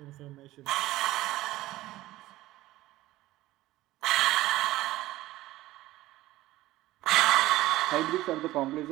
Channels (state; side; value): quieter; left; 16.6 dB